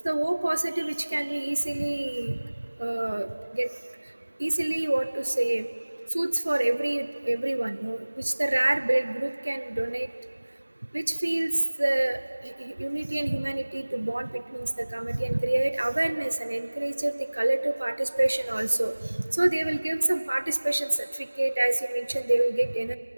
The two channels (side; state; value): both; inverted; correlation -1.00